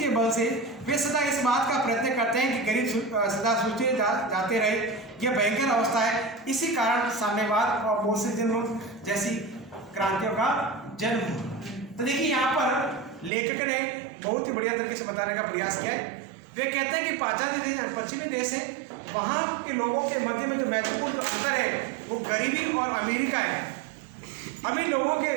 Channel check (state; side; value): drops out; left; at 13.3 s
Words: बल से वे सदा इस बात का प्रयत्न करते हैं कि गरीब सदा सूचे जाते रहे। यह भयंकर अवस्था है। इसी कारण साम्यवाद और बोल्शेविज्म जैसी क्रांतियों का जन्म हुआ। तो देखिए यहाँ पर लेखक ने बहुत ही बढ़िया तरीके से बताने का प्रयास किया है। वे कहते हैं कि पाश्चात्य देश पश्चिमी देश है, वहाँ के लोगों के मध्य में जो महत्वपूर्ण अंतर है वो गरीबी और अमीरी का है। अमीर लोगों के